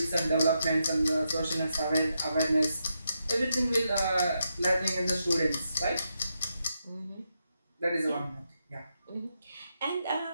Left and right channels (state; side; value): inverted; both; correlation -0.83